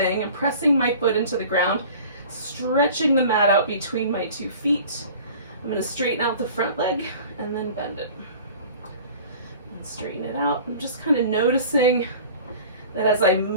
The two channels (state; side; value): inverted; both; correlation -0.44